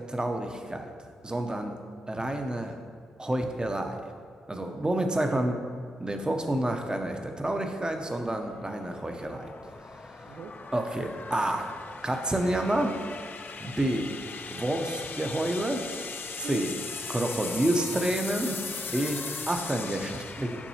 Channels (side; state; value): both; normal; correlation 0.84